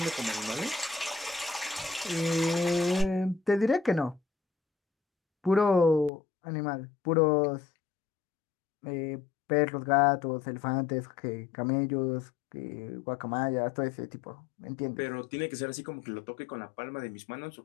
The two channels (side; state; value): right; drops out; at 6.1 s